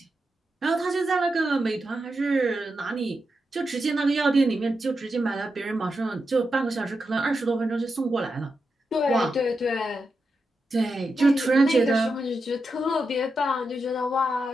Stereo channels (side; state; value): both; normal; correlation 0.87